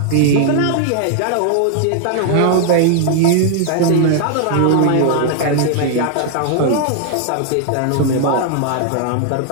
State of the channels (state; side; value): different; both; correlation 0.00